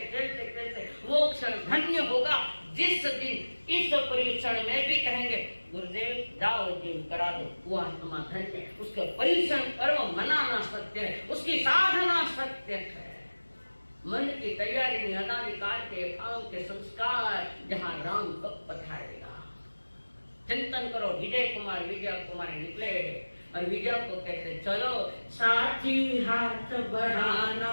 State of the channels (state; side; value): inverted; both; correlation -1.00